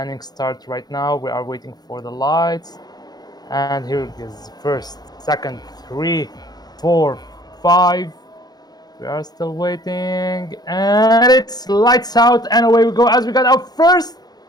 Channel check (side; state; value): right; late; 0.19 ms